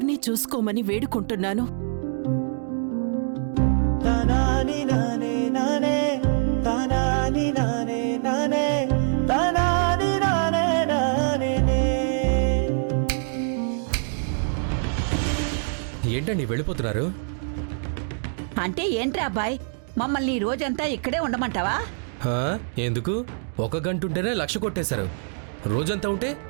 చూసుకోమని వేడుకుంటున్నాను. ఏంటండి వెళ్ళిపోతున్నారు? అంటే ఏంట్రా అబ్బాయ్, మమ్మల్ని ఈ రోజంతా ఇక్కడే ఉండమంటావా? హా, ఎందుకు? 1 గంట ఉంటేనే 1,00,000 కొట్టేశారు. రోజంతా ఉంటే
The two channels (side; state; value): left; silent; digital silence